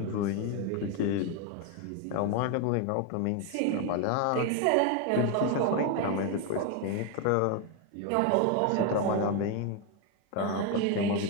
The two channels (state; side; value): different; both; correlation 0.01